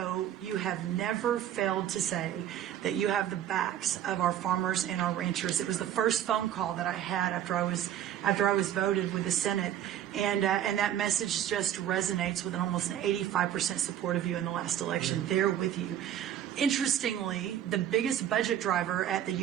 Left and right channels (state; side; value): quieter; left; 10.8 dB